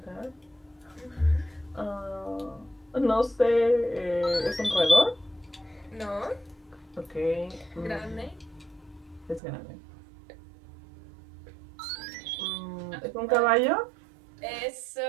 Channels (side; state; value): left; drops out; at 9.4 s